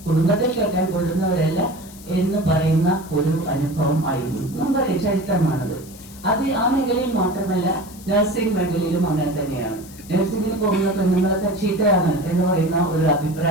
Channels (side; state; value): left; noise; hiss, 20 dB below the sound